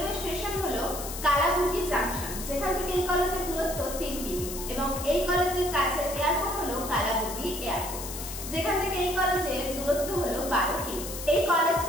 স্টেশন হলো কালাবুর্গি জাংশন, যেখান থেকে এই কলেজের দূরত্ব 3 কিমি, এবং এই কলেজের কাছে এয়ারপোর্ট হলো কালাবুর্গি এয়ারপোর্ট, যেখান থেকে এই কলেজের দূরত্ব হলো 12 কিমি। এই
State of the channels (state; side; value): noise; left; hiss, 8 dB below the sound